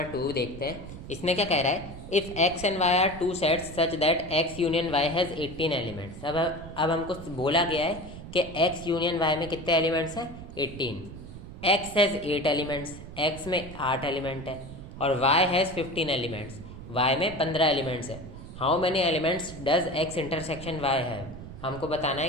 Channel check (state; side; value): noise; right; rumble, 13 dB below the sound